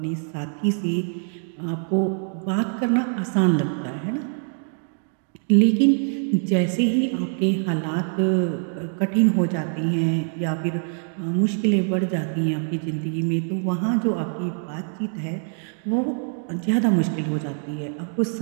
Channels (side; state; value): left; silent; 55 dB below the other